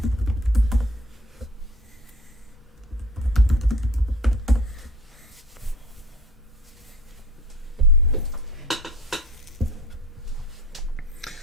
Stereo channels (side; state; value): both; normal; correlation 0.46